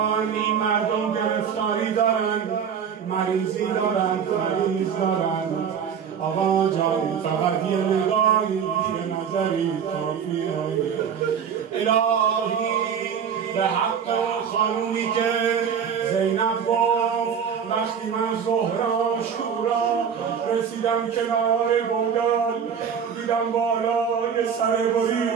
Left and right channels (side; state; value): left; quieter; 7.4 dB